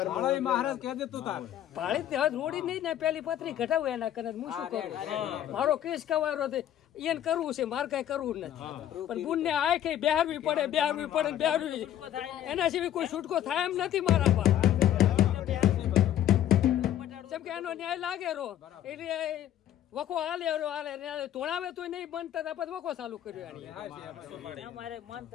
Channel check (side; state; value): right; quieter; 11.4 dB